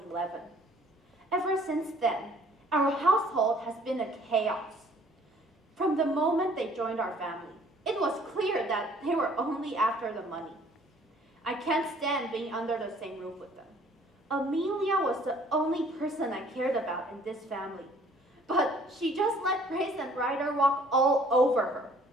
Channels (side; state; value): both; normal; correlation 0.57